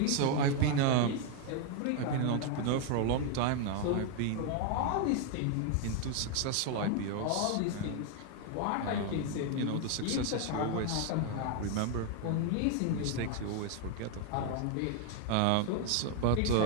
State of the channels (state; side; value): different; both; correlation 0.00